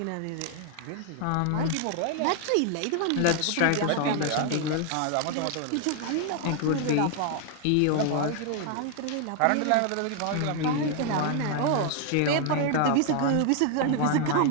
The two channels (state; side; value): different; both; correlation 0.00